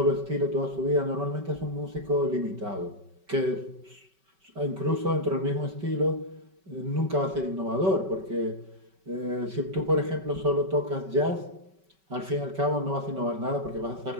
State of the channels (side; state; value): left; late; 5.3 ms